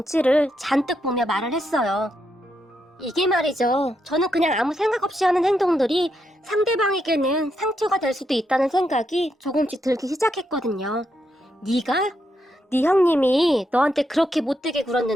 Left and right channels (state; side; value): normal; both; correlation 0.81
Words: 잔뜩 보며 말을 했어요. 이게 말이죠. 저는 그냥 아무 생각 없이 하는 행동들이 상대방에게는 상처가 될 수도 있다는 생각이 조금씩 들기 시작했거든요. 네가? 네 형님이 너한테 그렇게 못되게